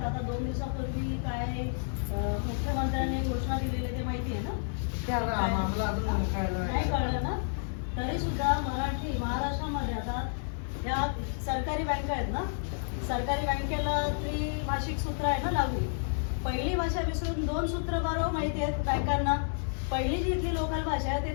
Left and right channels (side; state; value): right; silent; 57 dB below the other